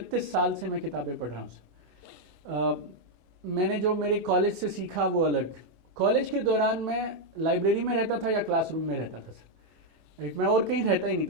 साल से मैं किताबें पढ़ रहा हूँ सर। मैंने जो मेरे कॉलेज से सीखा वो अलग। कॉलेज के दौरान मैं लाइब्रेरी में रहता था या क्लासरूम में रहता था सर, राइट। मैं और कहीं रहता ही नहीं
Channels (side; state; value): left; late; 25 ms